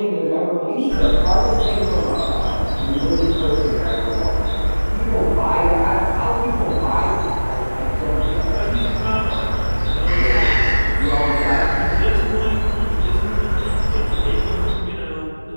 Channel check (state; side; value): inverted; both; correlation -1.00